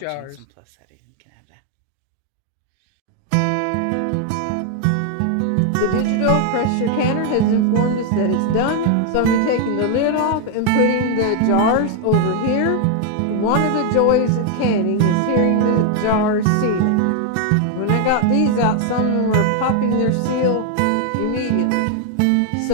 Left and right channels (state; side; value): different; both; correlation 0.00